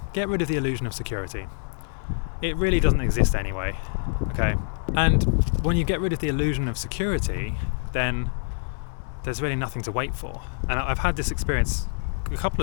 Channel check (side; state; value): right; silent; 61 dB below the other